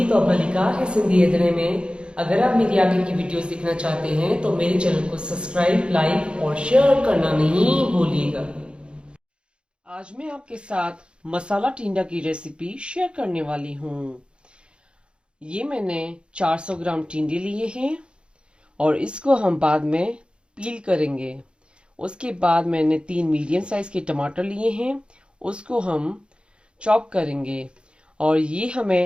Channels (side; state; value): left; late; 0.055 ms